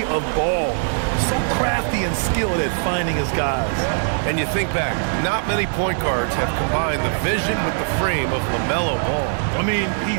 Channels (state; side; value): silent; left; digital silence